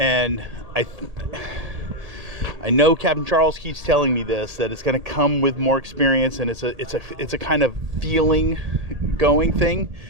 I know Captain Charles keeps telling me this, that it's going to come with more experience, and it's a kind of feeling going thing.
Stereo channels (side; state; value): left; late; 1.7 ms